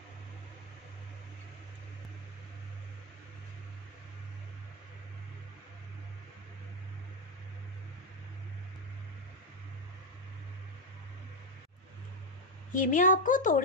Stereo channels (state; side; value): normal; both; correlation 0.04